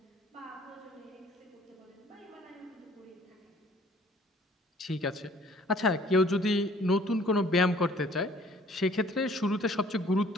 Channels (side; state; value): both; normal; correlation 0.56